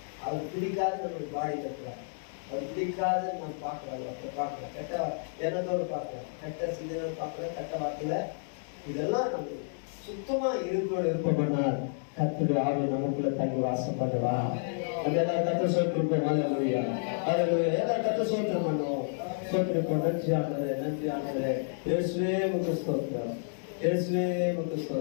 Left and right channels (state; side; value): silent; right; digital silence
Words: அவர் பிடிக்காது நம்மளுக்கு பாடி கட்டுறாரு. அவர் பிடிக்காது நம்ம பார்க்கலாம், அப்ப பார்க்கலாம், கெட்ட எண்ணத்தோடு பார்க்கலாம், கெட்ட சிந்தனை பார்க்கலாம், கெட்ட வார்த்தையில இதெல்லாம் நம்ம சுத்தமா இருப்போம்னால் கர்த்தருடைய ஆவி நமக்குள்ள தங்கி வாசம் பண்ணுவா. அதெல்லாம் கர்த்தர் சோத்திருப்போம். ஹல்லேலூயா ஹல்லேலூயா. எல்லாம் கர்த்தர் சோத்திரம் பண்ணுவோம். சோத்திருப்போம். நன்றி ஆண்டவரே, நன்றி ஆண்டவரே. இயேசுவே உமக்கு ஸ்தோத்திரம், இயேசுவே உமக்கு